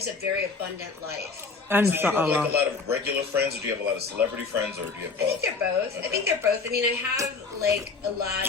a very abundant life. And So do you have like Allah. a lot of regular friends, or do you have a lot of celebrity friends, or do you have both? I think they're both. I mean, I have like a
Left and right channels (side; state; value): right; quieter; 4.4 dB